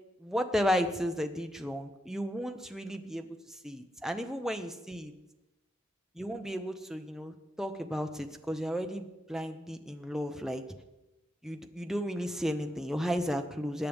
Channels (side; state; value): both; normal; correlation 0.85